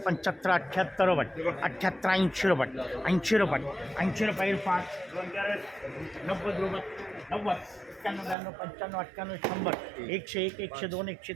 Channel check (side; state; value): left; drops out; at 8.3 s